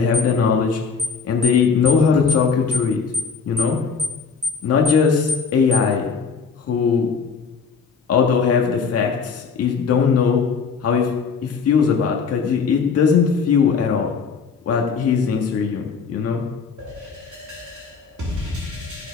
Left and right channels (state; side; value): quieter; right; 5.6 dB